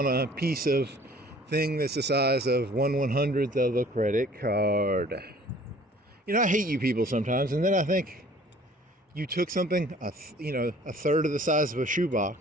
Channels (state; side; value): normal; both; correlation 0.52